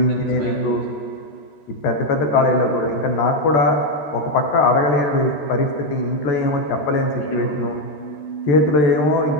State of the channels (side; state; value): right; late; 13 ms